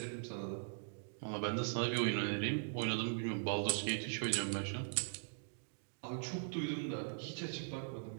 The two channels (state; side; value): silent; left; digital silence